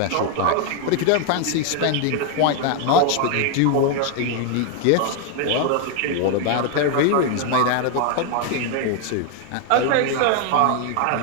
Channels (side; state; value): both; different; correlation 0.01